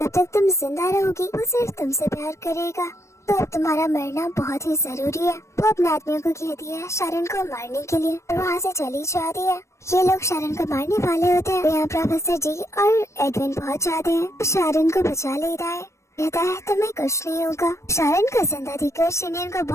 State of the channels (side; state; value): right; late; 0.14 ms